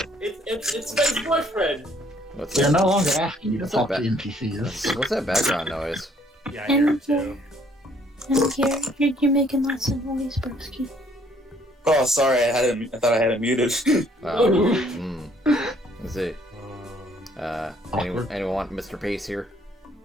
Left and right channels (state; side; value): normal; both; correlation 0.63